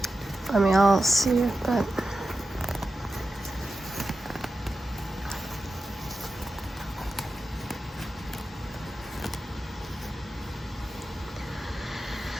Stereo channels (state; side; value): normal; both; correlation 0.91